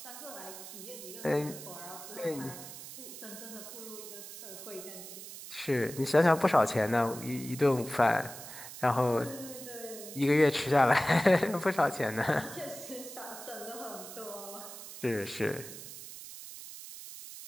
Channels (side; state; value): right; noise; hiss, 12 dB below the sound